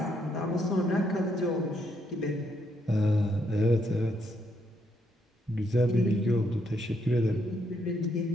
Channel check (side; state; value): both; normal; correlation 0.75